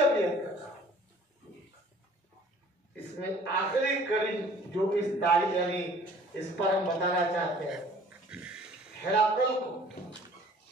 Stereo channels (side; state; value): both; normal; correlation 0.52